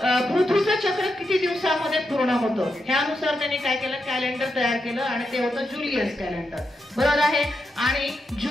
पृथ्वीचं चक्र किती दिवसामध्ये पूर्ण होतं ह्यानुसार त्यांनी काय केलं कॅलेंडर तयार केलं आणि ते होतं जुलियस कॅलेंडर. बरोबर आहे. आणि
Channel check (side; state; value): both; normal; correlation 0.85